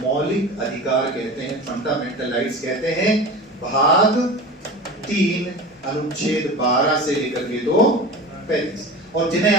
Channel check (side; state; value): both; normal; correlation 0.32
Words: अधिकार कहते हैं, फंडामेंटल राइट्स कहते हैं, भाग 3 अनुच्छेद 12 से लेकर के 2:35। और जिन्हें